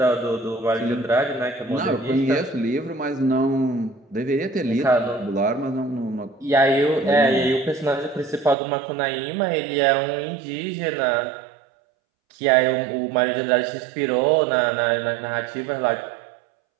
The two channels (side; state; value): left; drops out; at 8.6 s